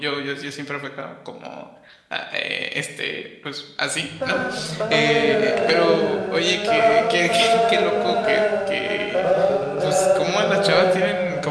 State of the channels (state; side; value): identical; both; correlation 1.00